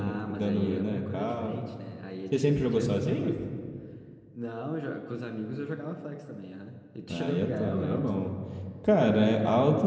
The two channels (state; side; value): identical; both; correlation 1.00